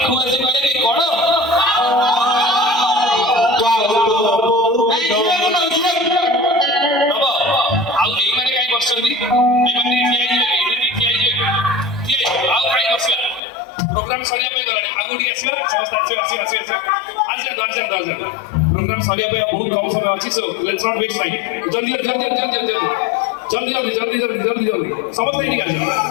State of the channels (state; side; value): drops out; right; at 13.4 s